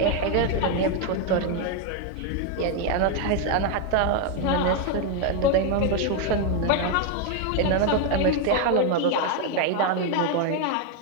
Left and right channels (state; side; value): different; both; correlation 0.01